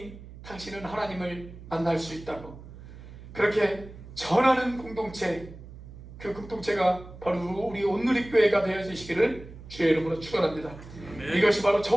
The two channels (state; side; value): noise; right; hum, 16 dB below the sound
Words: 당신은 하나님을 만날 수 있다고, 그렇게 전하는 공동체, 그 공동체가 바로 우리 온누리교회가 되어지시기를 주의 이름으로 축원합니다. 이것이 바로